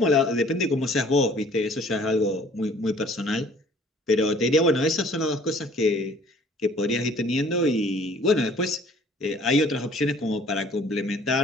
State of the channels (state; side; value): normal; both; correlation 0.54